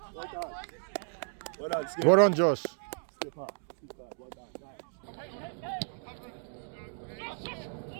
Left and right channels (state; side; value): silent; left; 55 dB below the other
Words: Well done, Skip. Well done, Josh. Skip up. Well done, nice.